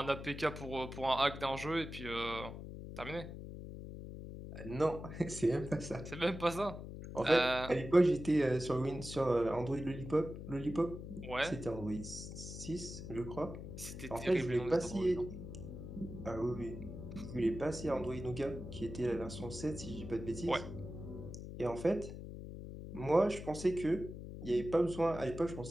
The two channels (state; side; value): noise; left; hum, 10 dB below the sound